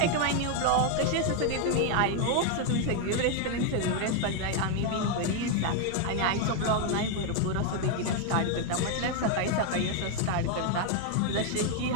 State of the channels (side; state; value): both; different; correlation 0.00